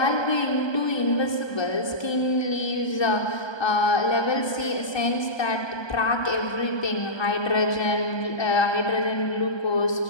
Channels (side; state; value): right; late; 1.2 ms